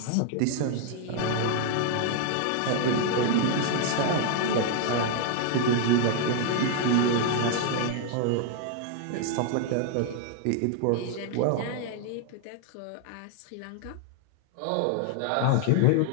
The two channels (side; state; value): both; different; correlation 0.00